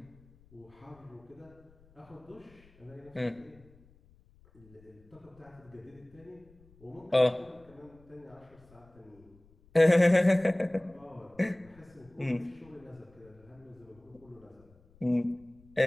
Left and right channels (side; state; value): left; noise; rumble, 27 dB below the sound